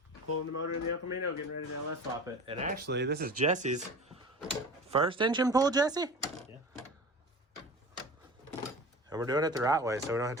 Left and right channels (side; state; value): both; normal; correlation 0.36